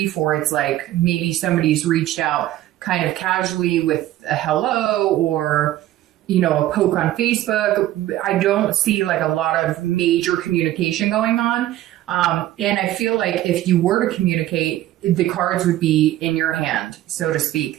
or it's like maybe somebody's reached out kind of casually with a hello, or a poke on Facebook. I don't see like a lot of major communication going on. And I feel like if you were to communicate, the cards would be in your hand, so to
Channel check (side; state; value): left; quieter; 14.2 dB